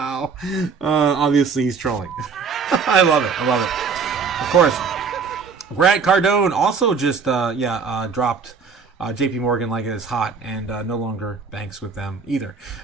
Obviously he's trolling. I love it. Of course. Grant Cardone also just dropped JP Morgan like it is hot, and no longer banks with them either.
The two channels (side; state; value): left; quieter; 5.5 dB